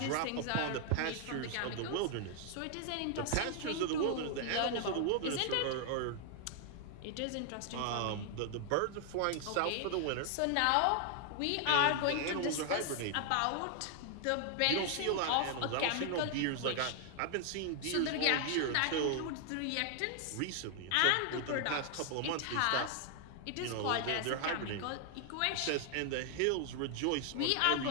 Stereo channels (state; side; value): different; both; correlation 0.00